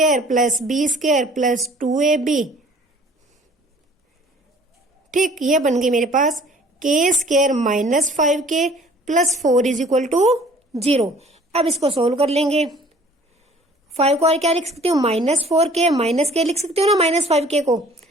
plus B square plus 2ab, ठीक, ये बन गई मेरे पास k square minus 5k plus 4 is equal to 0। अब इसको सोल्व कर लेंगे, 5 को और क्या लिख सकती हूँ माइनस 4k, माइनस k लिख सकती हूँ ना माइनस 5k को,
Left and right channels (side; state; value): both; normal; correlation 0.53